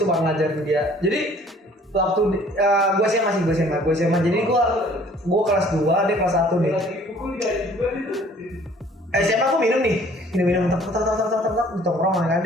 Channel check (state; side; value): normal; both; correlation 0.55